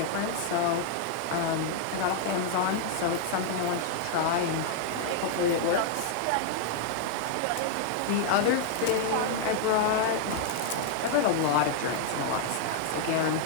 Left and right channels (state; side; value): different; both; correlation -0.01